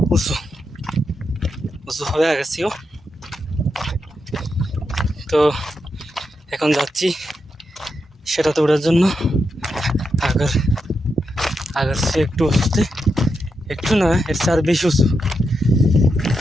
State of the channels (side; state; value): both; normal; correlation 0.85